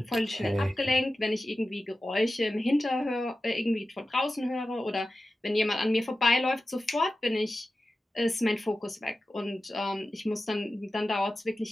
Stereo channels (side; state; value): both; normal; correlation 0.94